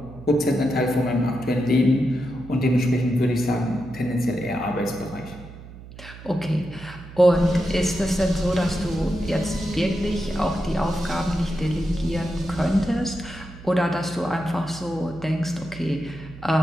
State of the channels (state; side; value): noise; right; hum, 16 dB below the sound